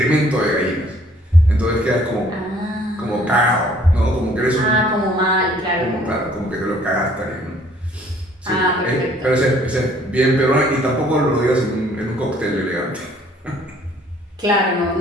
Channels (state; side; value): normal; both; correlation 0.59